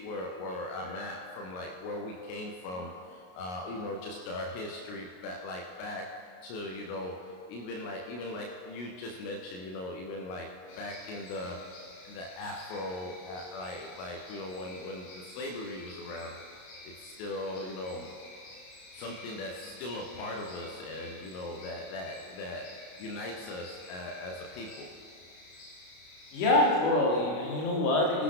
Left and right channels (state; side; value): late; right; 33 ms